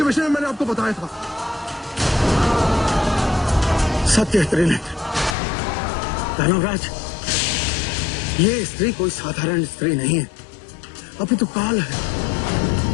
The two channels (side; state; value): right; drops out; at 5.4 s